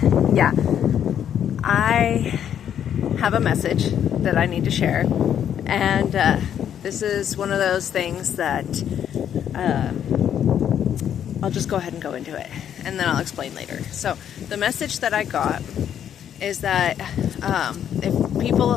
yeah, I have a message that I need to share. And this is one of those things that I'll just go ahead and go into it, and then I'll explain later. So the message that I got is that if people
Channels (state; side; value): quieter; right; 9.4 dB